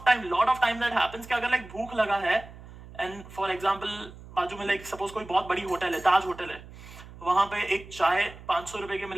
time that happens कि अगर लाइक भूख लगा है एंड फॉर एग्जांपल बाजू में लाइक सपोज कोई बहुत बड़ी होटल है, ताज होटल है, वहां पे एक चाय 500 रुपए की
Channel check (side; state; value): right; noise; hum, 17 dB below the sound